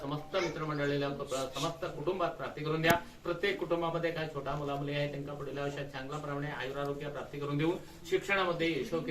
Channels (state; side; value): identical; both; correlation 1.00